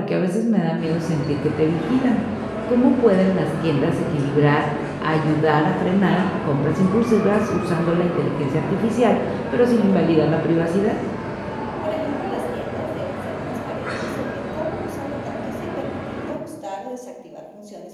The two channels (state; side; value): identical; both; correlation 1.00